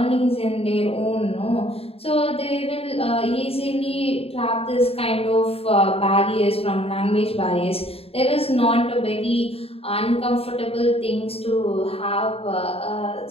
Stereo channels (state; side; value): late; right; 0.28 ms